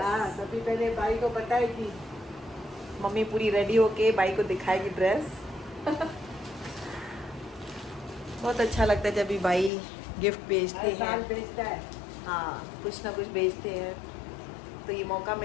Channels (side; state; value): right; drops out; at 9.7 s